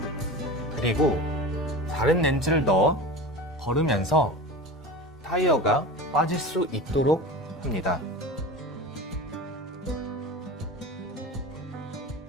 그리고 다른 렌치를 넣어 걸으면서 타이어가 빠질 수 있도록 합니다.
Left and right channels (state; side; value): normal; both; correlation 0.31